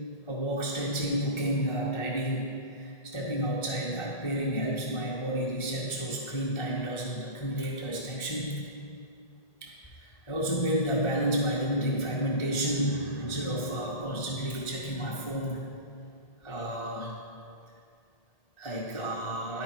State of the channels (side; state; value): right; late; 1.7 ms